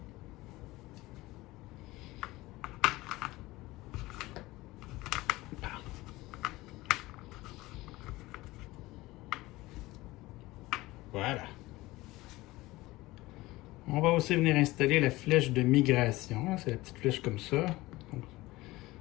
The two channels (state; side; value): quieter; right; 19.4 dB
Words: Voilà. On va aussi venir installer la flèche de migration. C'est la petite flèche comme ça. Donc,